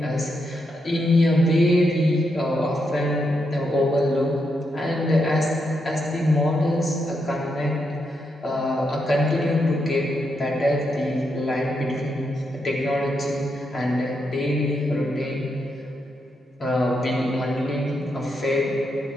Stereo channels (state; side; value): normal; both; correlation 0.82